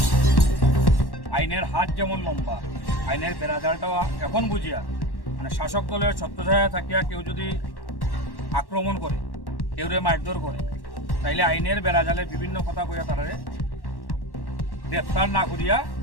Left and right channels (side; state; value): right; late; 1.1 ms